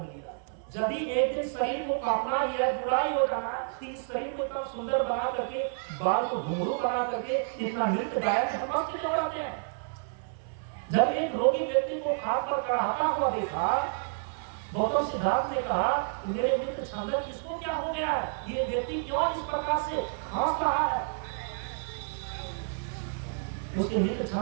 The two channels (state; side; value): silent; left; 58 dB below the other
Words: लिया। यदि एक दिन शरीर को कांपना ही है, बुराई हो जाना, इस शरीर को इतना सुंदर बना करके, बाल को घुंघरू बना करके इतना नृत्य गायक हम क्यों कराते हैं? जब एक रोगी व्यक्ति को खाट पर चढ़ाता हुआ देखा, गौतम सिद्धार्थ ने कहा, मेरे मित्र छंदक, इसको क्या हो गया है? ये व्यक्ति क्यों इस प्रकार से खांस रहा है? उसके मित्र